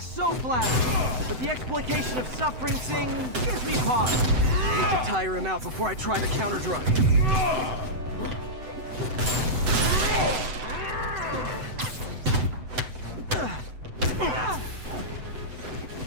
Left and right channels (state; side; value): late; left; 7.9 ms